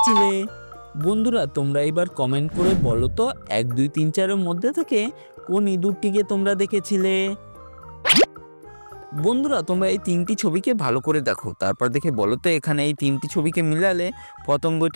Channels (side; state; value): both; inverted; correlation -1.00